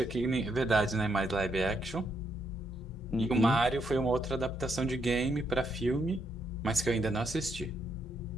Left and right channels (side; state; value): both; normal; correlation 0.77